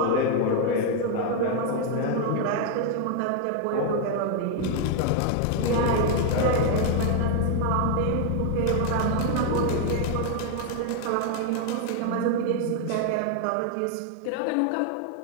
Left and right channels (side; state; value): both; different; correlation 0.00